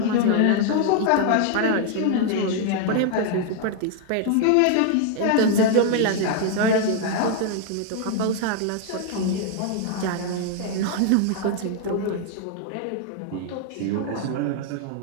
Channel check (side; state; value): both; different; correlation 0.00